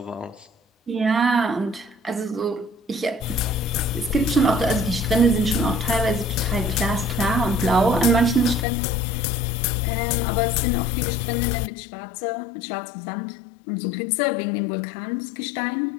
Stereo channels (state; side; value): drops out; right; at 8.7 s